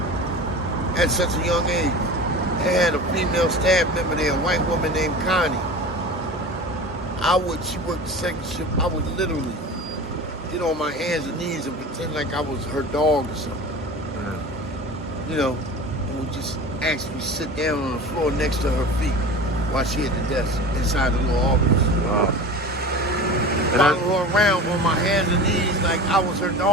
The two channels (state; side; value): normal; both; correlation 0.34